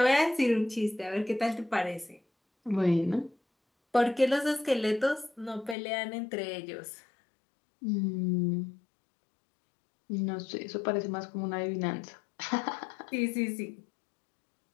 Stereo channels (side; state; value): right; drops out; at 5.8 s